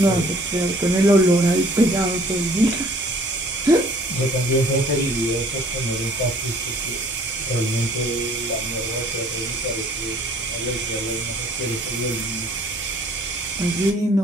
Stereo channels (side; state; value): both; normal; correlation 0.55